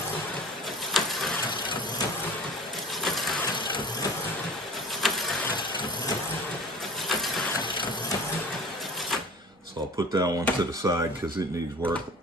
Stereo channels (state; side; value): normal; both; correlation 0.41